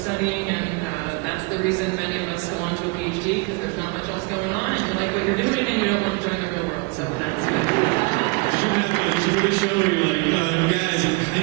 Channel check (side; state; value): left; quieter; 28.0 dB